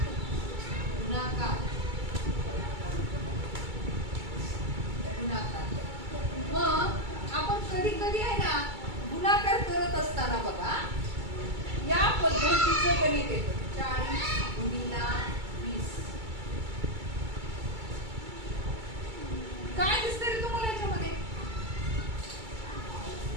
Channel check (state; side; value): late; left; 2.3 ms